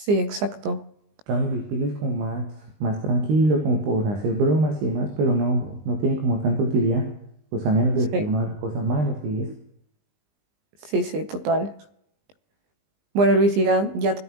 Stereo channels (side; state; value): left; late; 20 ms